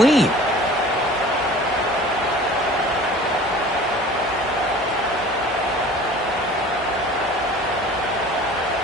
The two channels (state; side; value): normal; both; correlation 0.44